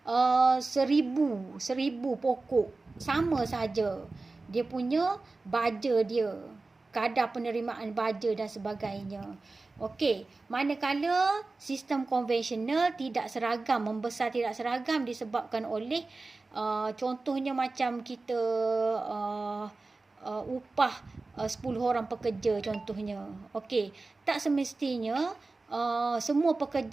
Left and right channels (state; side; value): quieter; left; 3.5 dB